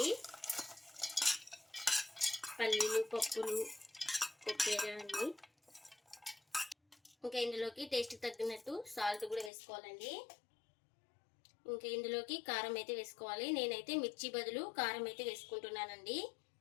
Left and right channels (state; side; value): drops out; right; at 9.5 s